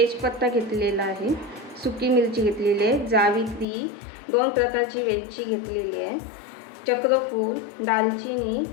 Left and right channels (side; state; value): right; drops out; at 3.7 s